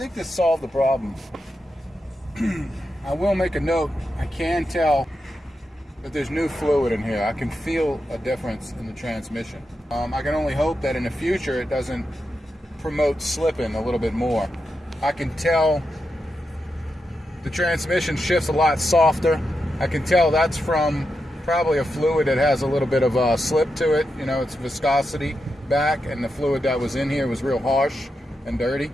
this solved the problem. I will make a note. I can tell that there's new fluid in here. I can feel a difference in the transmission. I can only hope that in the future it doesn't promote slipping a little bit more. I can tell the transmission shifts a lot softer. I can tell that's from probably a fluid that has a little bit of a slip to it. It's viscosity back, and the fluid that was in here was real harsh and dirty.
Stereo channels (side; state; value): both; normal; correlation 0.87